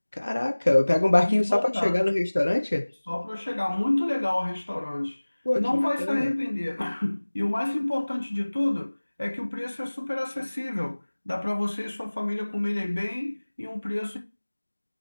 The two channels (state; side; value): inverted; both; correlation -1.00